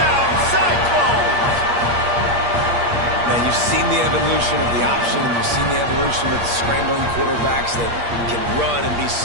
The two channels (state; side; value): late; left; 8.5 ms